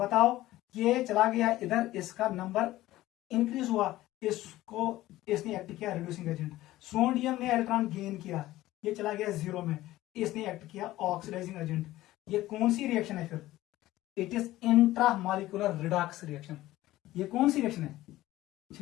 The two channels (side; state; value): right; quieter; 16.1 dB